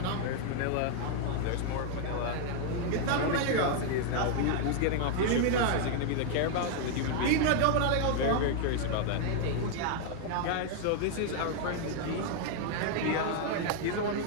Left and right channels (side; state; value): both; different; correlation 0.00